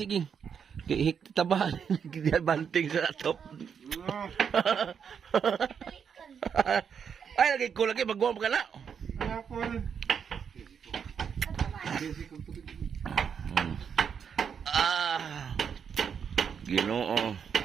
ging. Hik tabahan. Dia banting sa atop. Ay, lagi ko lagi magwam ka na. Ako rin. Ginoo.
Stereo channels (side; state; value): left; quieter; 7.2 dB